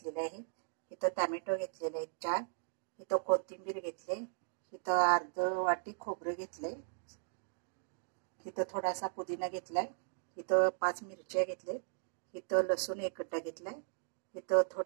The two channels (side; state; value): left; silent; digital silence